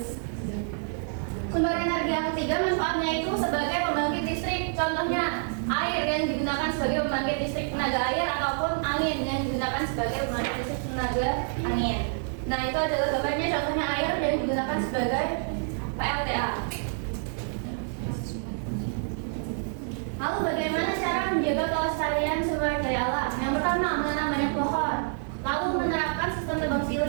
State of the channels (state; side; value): silent; left; 60 dB below the other